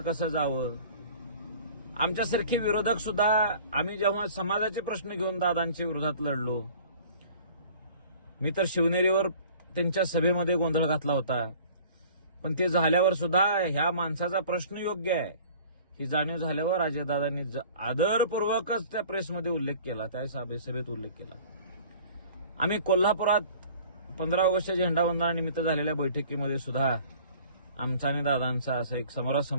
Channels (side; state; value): both; inverted; correlation -0.47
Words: कसं जावं. आमच्यासारखे विरोधक सुद्धा आम्ही जेव्हा समाजाचे प्रश्न घेऊन दादांच्या विरोधात लढलो, मी तर शिवनेरीवर त्यांच्या सभेमध्ये गोंधळ घातला होता, पण ते झाल्यावर सुद्धा ह्या माणसाचा प्रश्न योग्य आहे ही जाणीव झाल्यावर अजयदादांनी आदरपूर्वकच त्या प्रेसमध्ये उल्लेख केला, त्या सभेत उल्लेख केला. आम्ही कोल्हापुरात 15 ऑगस्टच्या झेंडावंदनानिमित्त झालेल्या बैठकीमध्ये सुद्धा आमचा आणि दादांचा असा एक